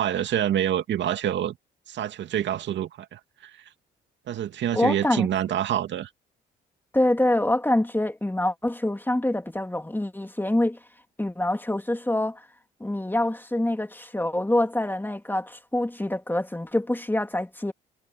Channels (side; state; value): both; normal; correlation 0.73